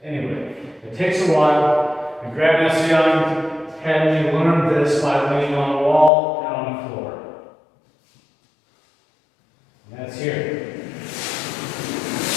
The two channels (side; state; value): right; drops out; at 6.1 s